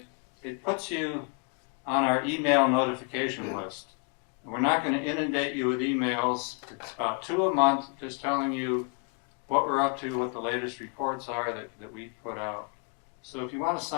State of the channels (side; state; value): right; quieter; 38.7 dB